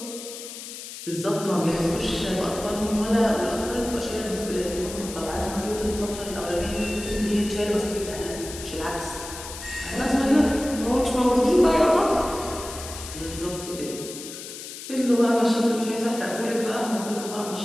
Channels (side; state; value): left; noise; hiss, 11 dB below the sound